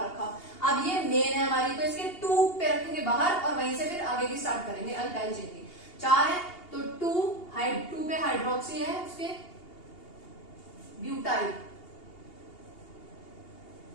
रखा। अब ये मेन है हमारी, तो इसके 2 पे रखेंगे बाहर और वहीं से फिर आगे की स्टार्ट करेंगे अल्काइल चेन की। 4 है तो 2 पे हाइड्रोक्सी है, उसके ब्यूटाइल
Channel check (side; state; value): right; late; 2.8 ms